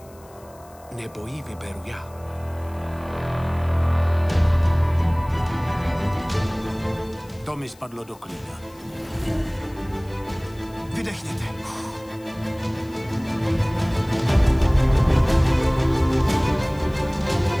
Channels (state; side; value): noise; left; hiss, 27 dB below the sound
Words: Nebo ji vyberu já. To mi spadlo do klína. Vydechněte.